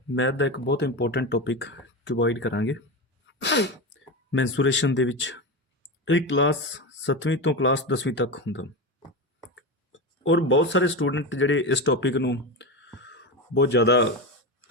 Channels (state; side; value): normal; both; correlation 0.20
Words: मैथ का एक बहुत इंपोर्टेंट टॉपिक क्यूबॉइड करांगे। मैंसूरेशन दे विच एक क्लास 7वीं तो क्लास 10वीं तक हुंदा और बहुत सारे स्टूडेंट जिहड़े इस टॉपिक नूं बहुत ज़्यादा